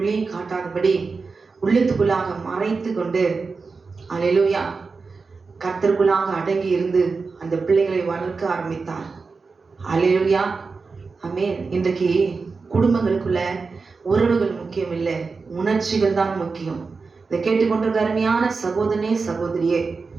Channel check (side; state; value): left; quieter; 4.5 dB